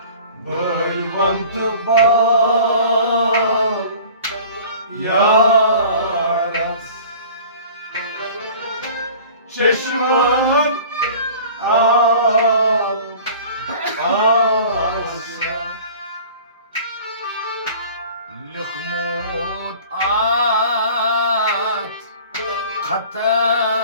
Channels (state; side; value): inverted; both; correlation -0.44